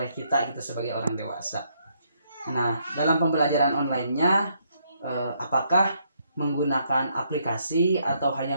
kita gitu sebagai orang dewasa. Nah, dalam pembelajaran online-nya apakah menggunakan aplikasi atau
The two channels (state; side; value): inverted; both; correlation -0.73